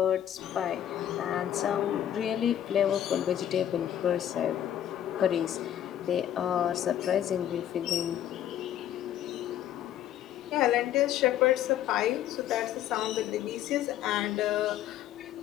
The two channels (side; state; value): right; quieter; 11.1 dB